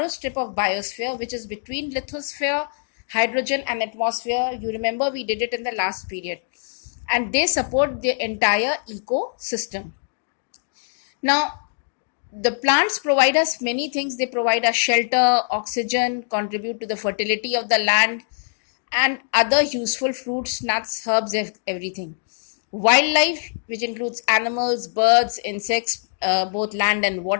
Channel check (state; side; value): silent; right; digital silence